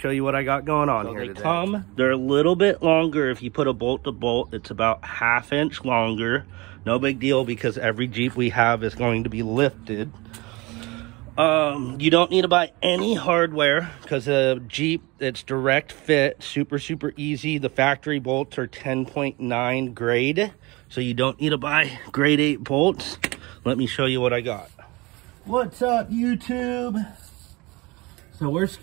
you what I got going on here today. They're a little bit longer. If you put a bolt to bolt, it's about 1/2 inch longer. No big deal, because every Jeep we have is going to be lifted. You don't need to buy any hardware, because a Jeep, it's direct fit, super easy. The factory bolts are 10.9 grade, so you don't need to buy grade 8 bolts. Let me show you what I got. What's up, YouTube? So we're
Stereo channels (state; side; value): quieter; left; 23.8 dB